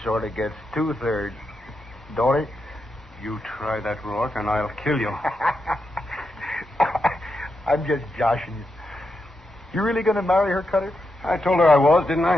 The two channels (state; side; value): normal; both; correlation 0.85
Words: sort of gets 2/3, don't it? You try that, Rourke, and I'll kill you. I'm just joshing you. You really going to marry her, Cutter? I told her I was, didn't